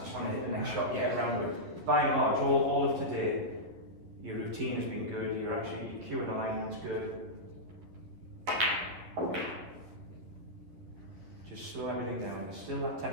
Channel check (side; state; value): left; late; 11 ms